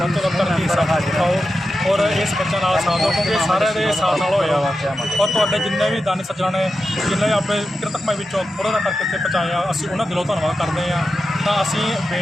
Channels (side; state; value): both; normal; correlation 0.90